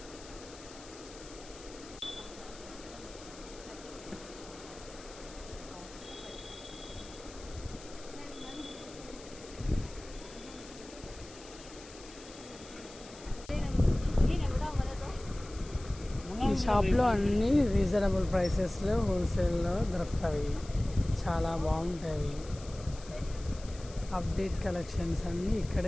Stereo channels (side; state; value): left; noise; hiss, 18 dB below the sound